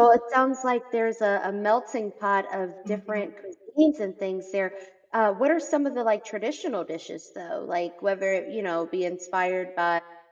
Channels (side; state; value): both; identical; correlation 1.00